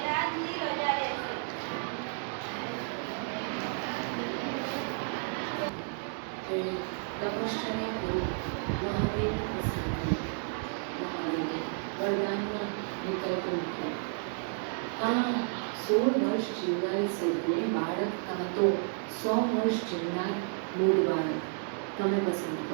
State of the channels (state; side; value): silent; left; 57 dB below the other